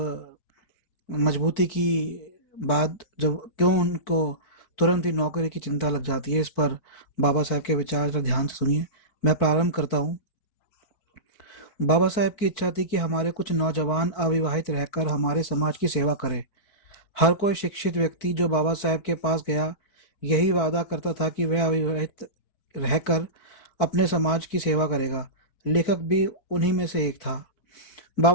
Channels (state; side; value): late; right; 4.5 ms